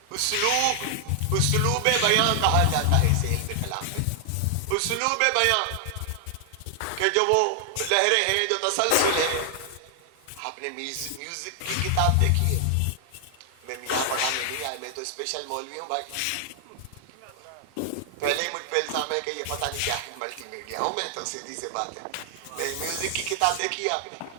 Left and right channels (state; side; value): different; both; correlation 0.00